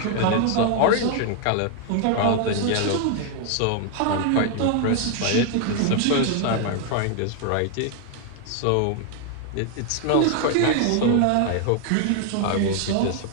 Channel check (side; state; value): both; different; correlation 0.00